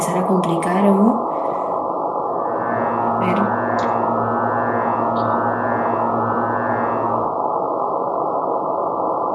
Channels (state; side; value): identical; both; correlation 1.00